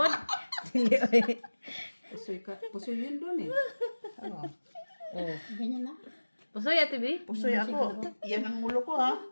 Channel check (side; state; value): both; inverted; correlation -1.00